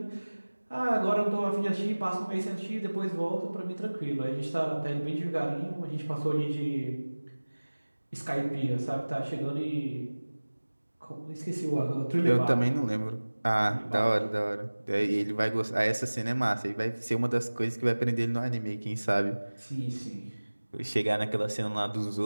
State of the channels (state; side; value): inverted; both; correlation -1.00